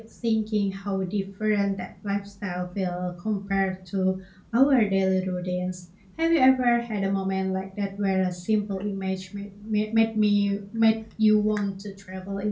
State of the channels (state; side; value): identical; both; correlation 1.00